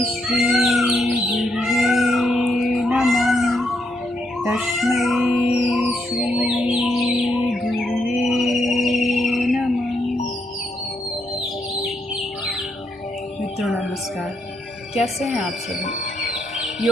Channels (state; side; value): normal; both; correlation 0.78